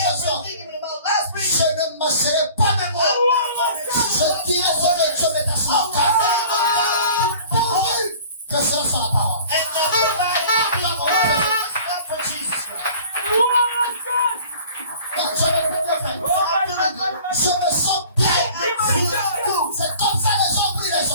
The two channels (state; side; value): inverted; both; correlation -0.46